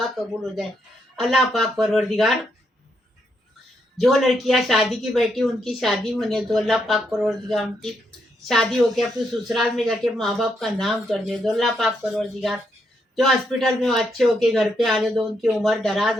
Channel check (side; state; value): both; normal; correlation 0.78